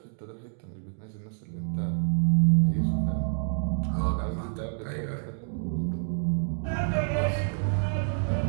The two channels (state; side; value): silent; left; digital silence